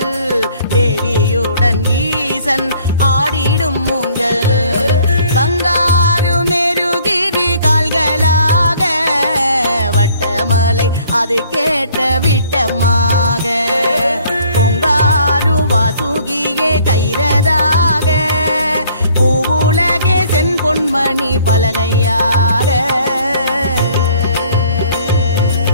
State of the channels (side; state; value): both; inverted; correlation -0.58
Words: தேவியுடன் ஈசன் ஆடிடும் ஊஞ்சல் பங்காரு மெருகிரி கால்களாக வட்டமலை அது கேட்ட விட்டமாக பொங்காரு வாசுகியே கைரதாக பூவுலகே சென் பொன்மணி பலகையாக